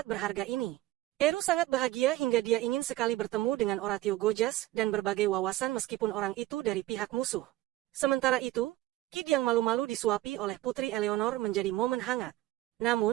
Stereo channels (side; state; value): left; quieter; 16.2 dB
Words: berharga ini. Eru sangat bahagia hingga dia ingin sekali bertemu dengan Oratio Gojas dan berbagai wawasan meskipun orang itu dari pihak musuh. Sementara itu, Kid yang malu-malu disuapi oleh Putri Eleanor menjadi momen hangat.